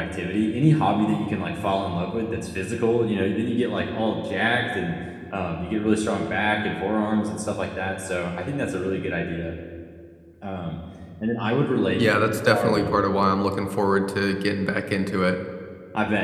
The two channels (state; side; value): identical; both; correlation 1.00